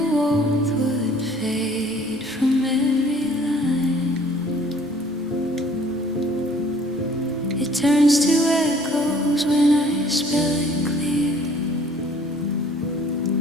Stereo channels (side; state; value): both; normal; correlation 0.55